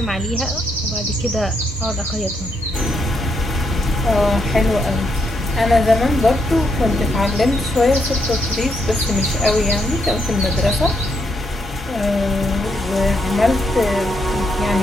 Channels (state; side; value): normal; both; correlation 0.78